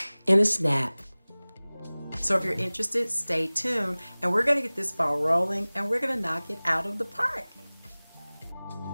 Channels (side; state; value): both; inverted; correlation -1.00